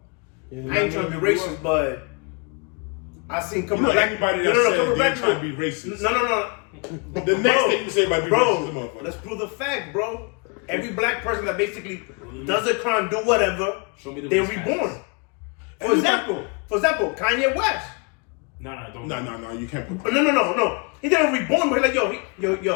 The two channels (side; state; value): right; quieter; 33.4 dB